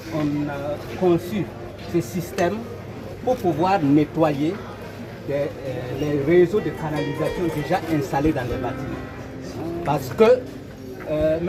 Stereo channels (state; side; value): identical; both; correlation 1.00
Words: on a conçu ce système pour pouvoir nettoyer les réseaux de canalisation déjà installés dans les bâtiments. Parce que